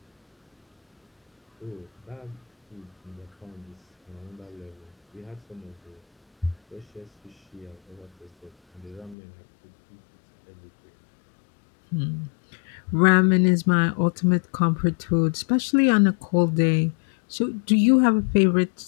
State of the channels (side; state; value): right; drops out; at 9.2 s